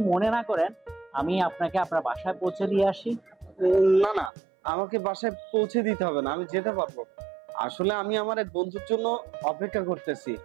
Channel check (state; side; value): drops out; left; at 4.3 s